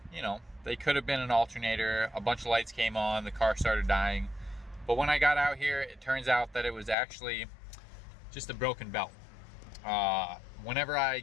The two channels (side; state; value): right; drops out; at 7.0 s